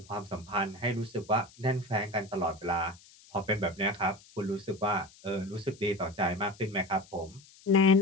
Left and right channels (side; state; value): left; noise; hiss, 24 dB below the sound